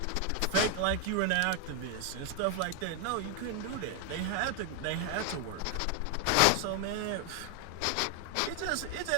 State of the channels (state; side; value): different; both; correlation 0.00